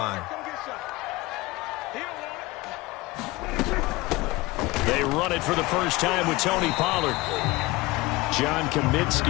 They run it for the first time with Tony Pollard. John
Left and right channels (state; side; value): quieter; right; 20.7 dB